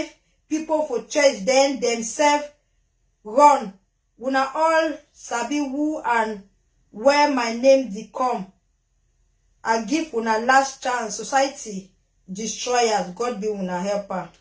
people for church, then themselves run. Una all sabi who and where my name dey come. I give una last chance. Society destroyers. God be una helper.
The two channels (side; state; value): both; identical; correlation 1.00